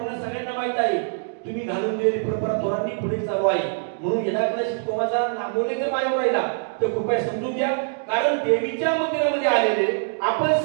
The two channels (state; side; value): silent; left; digital silence